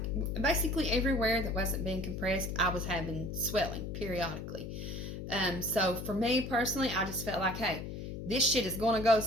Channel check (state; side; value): noise; left; hum, 7 dB below the sound